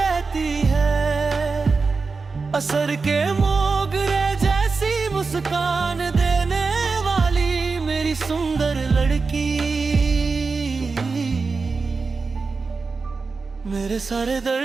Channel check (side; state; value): left; quieter; 4.4 dB